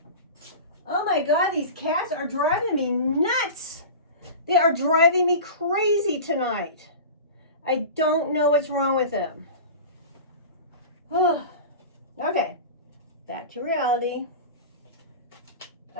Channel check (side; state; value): both; inverted; correlation -0.32